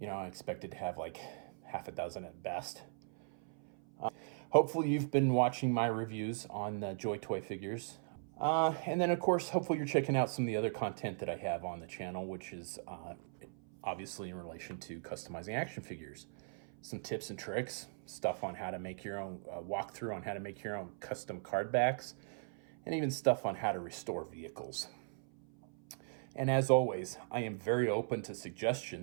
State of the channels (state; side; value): silent; left; 52 dB below the other